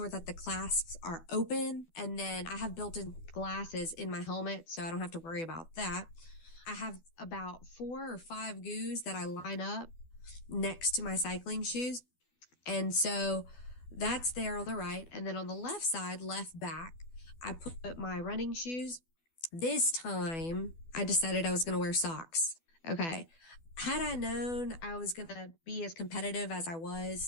that the clasps are open, and then I have built-in glasses in my helmet, so I don't have to worry about that. I have about 4 or 5 goos that I line up next to my cycling shoes. And so that's there on the right. And then on the left side, left back, I put my running shoes. This time I decided I was going to wear socks. Okay. Had I known I was going to be as competitive as I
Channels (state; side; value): late; right; 12 ms